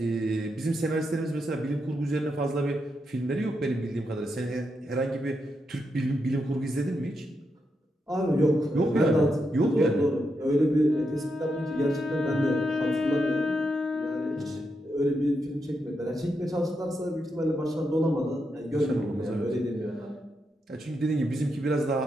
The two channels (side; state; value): both; normal; correlation 0.84